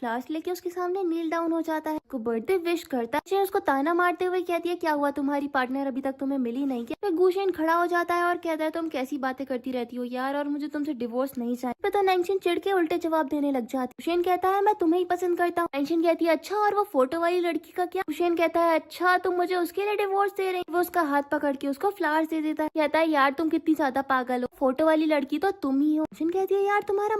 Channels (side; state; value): both; identical; correlation 1.00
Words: लेके उसके सामने नील डाउन हो जाता है, उसको बर्थडे विश करता है। उसको ताना मारते हुए कहती है क्या हुआ तुम्हारी पार्टनर अभी तक तुम्हें मिली नहीं क्या। फिर गुशेन खड़ा हो जाता है और कहता है तुम कैसी बातें करती रहती हो यार, और मुझे तुमसे डिवोर्स नहीं चाहिए। तो नैंगशिन चिढ़ के उल्टे जवाब देने लग जाती है। गुशेन कहता है मैं तुम्हें ही पसंद करता हूँ। नैंगशिन कहती है अच्छा और वो फोटो वाली लड़की का क्या। गुशेन कहता है अच्छा तुम मुझे उसके लिए डिवोर्स दे रही। वो उसका हाथ पकड़ के उसको फ्लावर्स दे देता है, कहता है यार तुम कितनी ज्यादा पागल हो, फोटो वाली लड़की तो तुम ही हो। गुशेन कहती है यार तुम्हारा